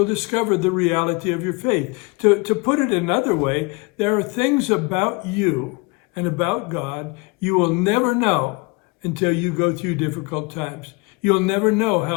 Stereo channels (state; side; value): quieter; right; 27.3 dB